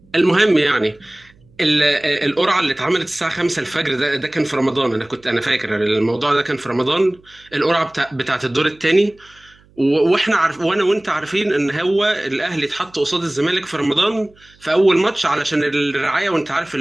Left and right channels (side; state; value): right; noise; hum, 30 dB below the sound